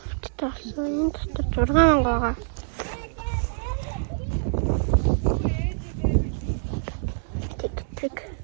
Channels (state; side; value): silent; left; 61 dB below the other